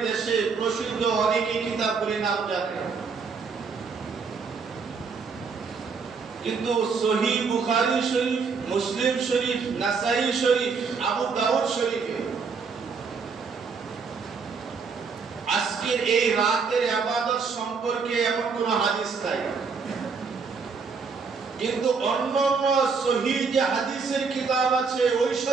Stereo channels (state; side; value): quieter; left; 5.2 dB